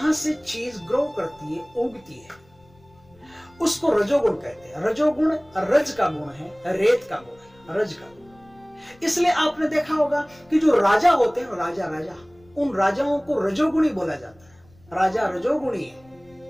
से चीज ग्रो करती है, उगती है, उसको रजोगुण कहते हैं। रजोगुण रज का गुण है, रेत का गुण है, रज का गुण। इसलिए आपने देखा होगा कि जो राजा होते हैं, राजा उन राजाओं को रजोगुणी बोला जाता है। राजा रजोगुणी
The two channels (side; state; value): left; noise; rumble, 29 dB below the sound